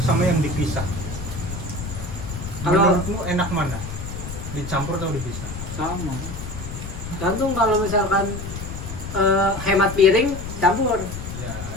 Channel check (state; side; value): noise; left; rumble, 8 dB below the sound